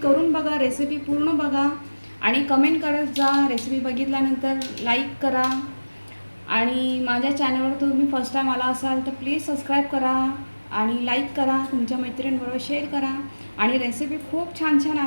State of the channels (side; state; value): both; inverted; correlation -1.00